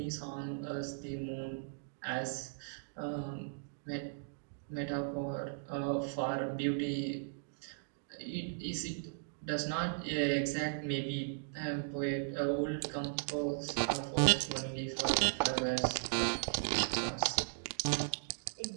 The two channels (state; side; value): silent; left; digital silence